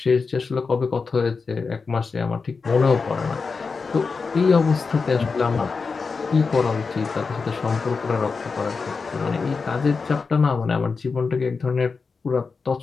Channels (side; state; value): right; quieter; 4.7 dB